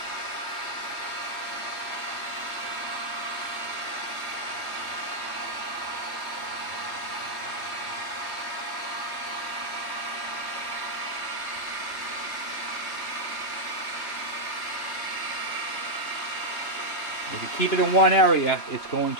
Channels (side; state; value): right; late; 3.3 ms